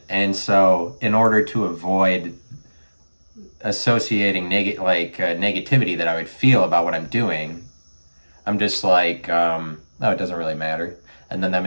and so in order to avoid associating negativity that I would feel about what I'm doing, I'm just like, no, it doesn't really matter. And then that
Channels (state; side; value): inverted; both; correlation -1.00